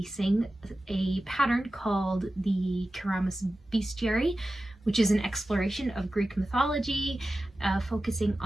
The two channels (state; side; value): normal; both; correlation 0.94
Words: a pattern called the Keramos Bestiary, which is an exploration of Greek mythology, focusing